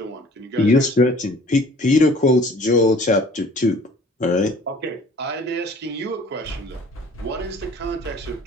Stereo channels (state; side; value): normal; both; correlation 0.51